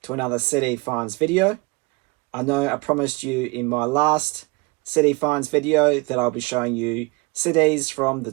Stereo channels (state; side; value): quieter; left; 26.2 dB